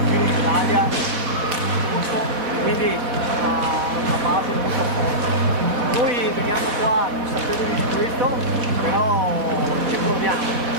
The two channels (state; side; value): late; left; 4.1 ms